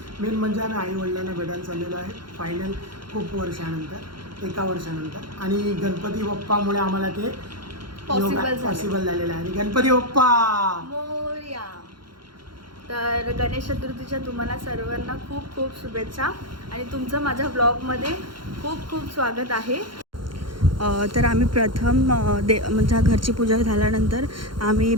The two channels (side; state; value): left; late; 0.72 ms